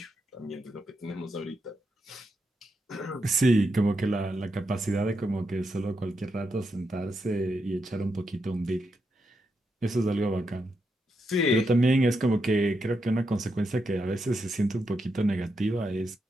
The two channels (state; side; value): normal; both; correlation 0.83